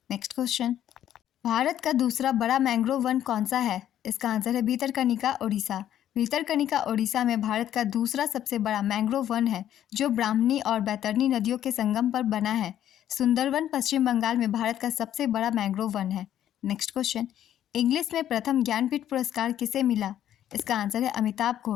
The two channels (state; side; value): quieter; right; 11.2 dB